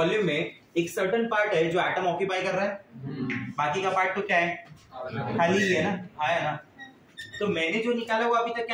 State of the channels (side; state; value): both; identical; correlation 1.00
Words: में एक सर्टेन पार्ट है जो एटम ऑक्यूपाई कर रहा है, बाकी का पार्ट तो क्या है? खाली ही है ना। हाँ है ना। तो मैंने जो निकाला वो अभी तक